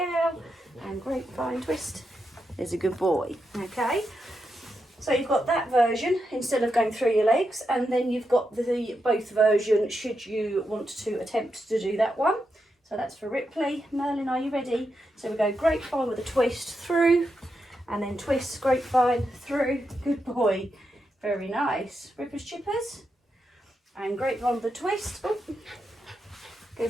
and grapevine, twist, there's a good boy. Okay, so you've got that version instead of going through your legs, and then you've got the both version should you want to attempt to do that one. So that's for Ripley. Merlin, are you ready? So we go grapevine with a twist through, and then twist, grapevine, through, good boy, very nice. Rippers, chippers, and grapevine with a twist, oh, go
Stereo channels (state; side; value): normal; both; correlation 0.85